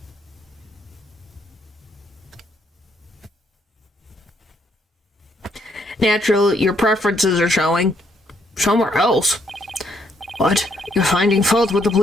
Natural, your preferences are showing. Somewhere else? What? You're finding fault with the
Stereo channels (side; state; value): both; normal; correlation 0.72